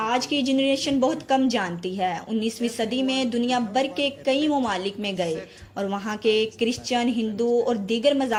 की जनरेशन बहुत कम जानती है, 19वीं सदी में दुनिया भर के कई ममालिक में गए और वहाँ के क्रिश्चियन, हिंदू और दीगर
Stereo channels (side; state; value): both; identical; correlation 1.00